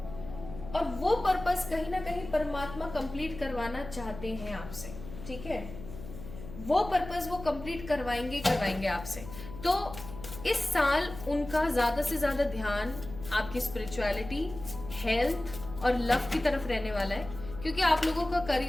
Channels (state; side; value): noise; left; hum, 12 dB below the sound